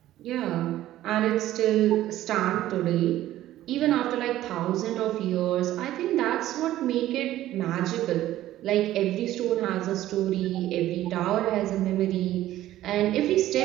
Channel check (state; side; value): quieter; left; 14.1 dB